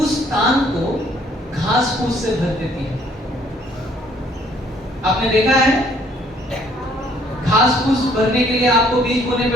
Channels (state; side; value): normal; both; correlation 0.63